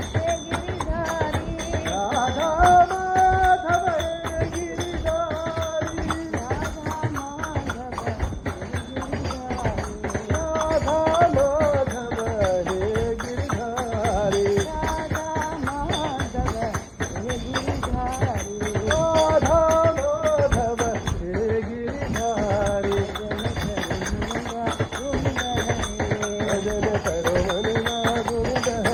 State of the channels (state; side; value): identical; both; correlation 1.00